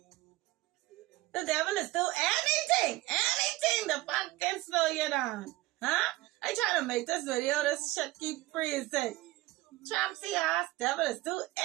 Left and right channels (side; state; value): left; quieter; 18.5 dB